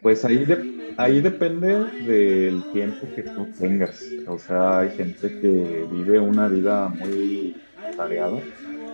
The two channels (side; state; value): both; inverted; correlation -1.00